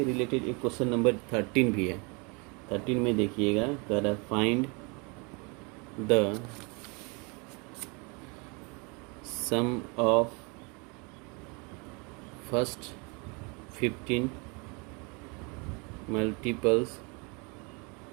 रिलेटेड एक क्वेश्चन नंबर 13 भी है, 13 में देखिएगा, कर find the sum of first 15 multiples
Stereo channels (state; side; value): quieter; left; 30.9 dB